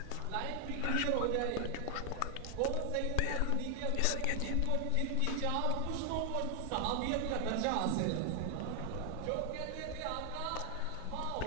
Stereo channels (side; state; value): both; different; correlation 0.00